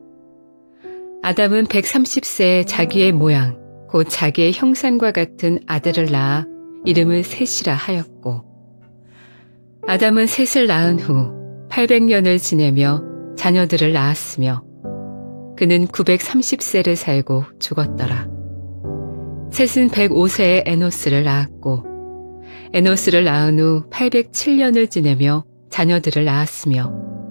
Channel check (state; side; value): inverted; both; correlation -1.00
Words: 아담은 130세에 자기의 모양 곧 자기의 형상과 같은 아들을 낳아 이름을 셋이라 하였고 아담은 셋을 낳은 후 800년을 지내며 자녀들을 낳았으며 그는 930세를 살고 죽었더라. 셋은 105세에 에노스를 낳았고 에노스를 낳은 후 807년을 지내며 자녀들을 낳았으며